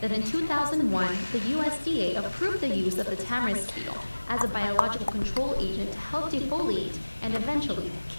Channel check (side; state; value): both; inverted; correlation -1.00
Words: in 2001, the USDA approved the use of the tamarisk beetle as a biological control agent to help defoliate and eventually